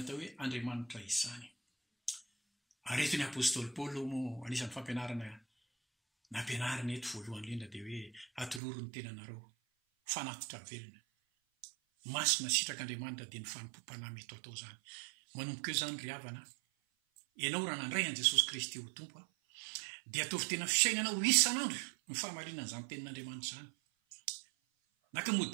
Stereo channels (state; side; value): drops out; left; at 8.6 s